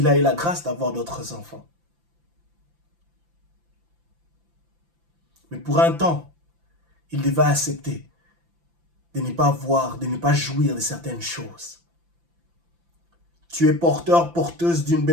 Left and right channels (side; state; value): left; late; 5.9 ms